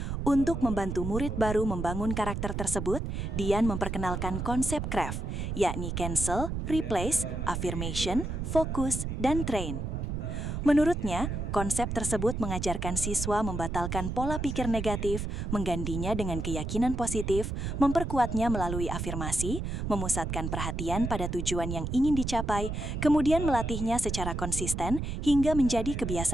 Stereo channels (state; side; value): noise; right; rumble, 3 dB below the sound